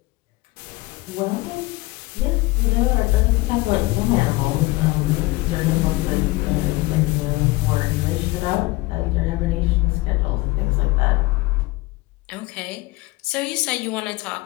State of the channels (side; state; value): right; quieter; 21.4 dB